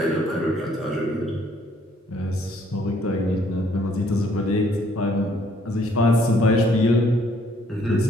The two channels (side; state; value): both; normal; correlation 0.64